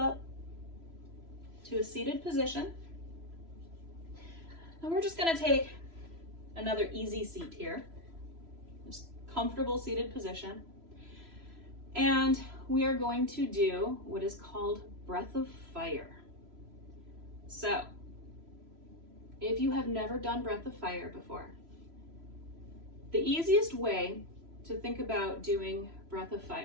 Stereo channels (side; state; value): left; late; 3.0 ms